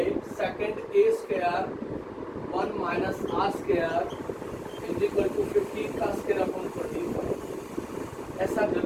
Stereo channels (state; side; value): identical; both; correlation 1.00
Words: second a square 1 minus r square is equal to 15 का स्क्वायर अपॉन 45। ऐसा